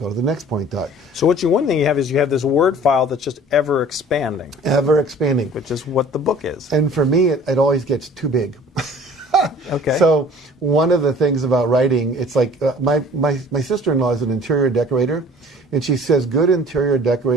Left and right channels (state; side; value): normal; both; correlation 0.48